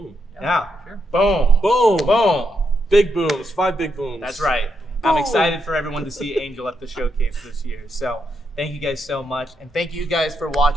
Yeah. For sure. Boom. Boom. Boom. Big booms. 5 big booms. That's right. I'm excited for everyone to see Angel at the showcase this year. So thank you guys so much. And thank you guys for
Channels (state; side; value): normal; both; correlation 0.81